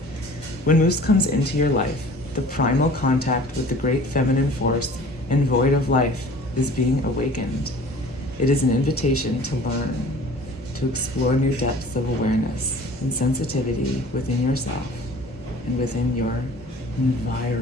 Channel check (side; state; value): both; normal; correlation 0.46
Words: When moose comes into your life, the primal contact with the great feminine force and void of life is being awakened. It is an invitation to learn, to explore new depths of awareness and sensitivity within yourself and within your